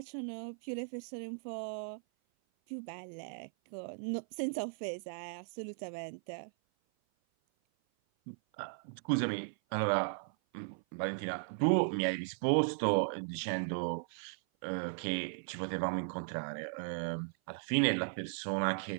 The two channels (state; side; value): silent; left; 53 dB below the other